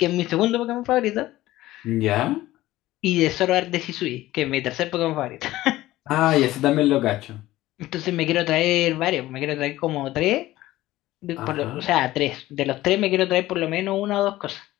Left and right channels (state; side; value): quieter; right; 16.3 dB